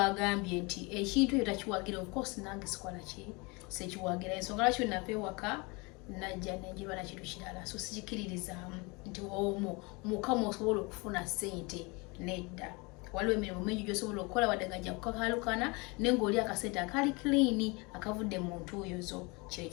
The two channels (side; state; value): right; quieter; 27.6 dB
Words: nti ekintu ekyo takiwagira of course nange sikola ki sekiwagira ensonga lwaki napewaka najja nenjiba na kintu kirala so sikiririzaamu nti mukama osobola okufuna ssente nedda waliwo emirimu mingi gy'osobola okukola wadde ngajja kukakalukana naye ng'oli akasente akali clean akavudde mu ntuuyo